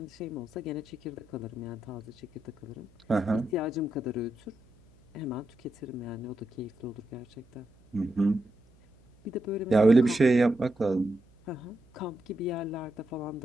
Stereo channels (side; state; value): right; noise; hum, 29 dB below the sound